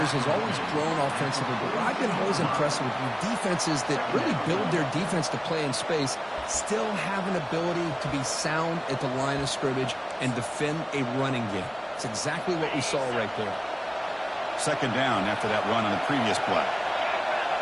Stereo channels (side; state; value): both; identical; correlation 1.00